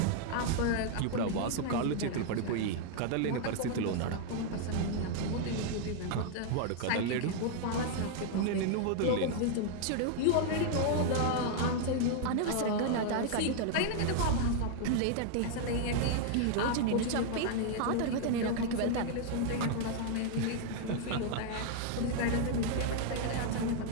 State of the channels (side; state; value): both; different; correlation 0.00